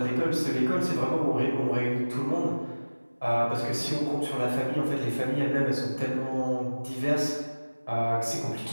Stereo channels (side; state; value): both; inverted; correlation -1.00